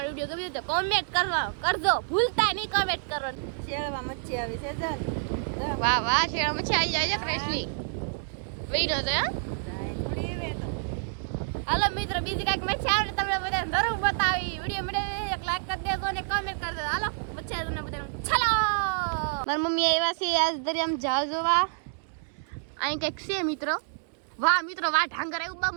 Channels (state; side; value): silent; left; digital silence